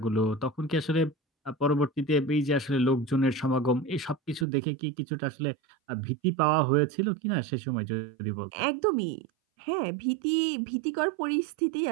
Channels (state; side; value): drops out; left; at 4.5 s